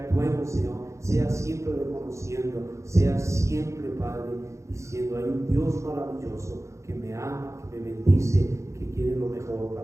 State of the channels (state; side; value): late; left; 0.14 ms